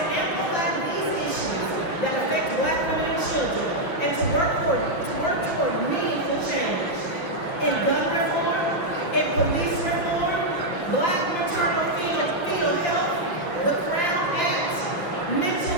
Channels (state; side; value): late; right; 6.2 ms